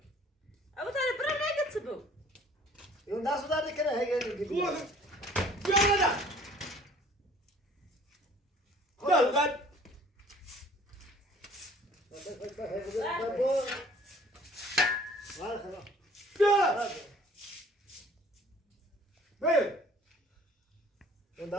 ابو طالب برا نگت بو این دست داره کنه هیگه بیا نده دل قد بیا بیا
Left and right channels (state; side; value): normal; both; correlation 0.53